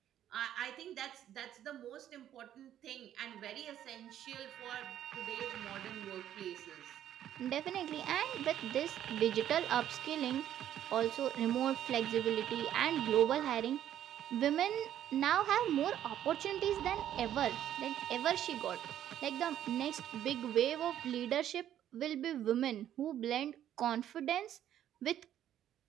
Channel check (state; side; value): quieter; left; 11.2 dB